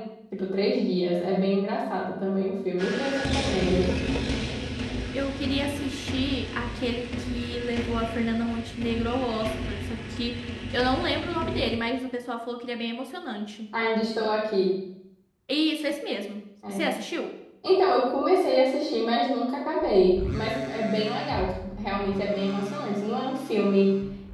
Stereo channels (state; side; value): identical; both; correlation 1.00